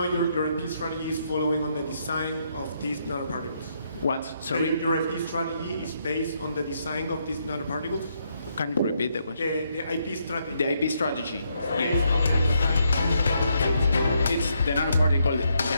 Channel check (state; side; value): inverted; both; correlation -0.76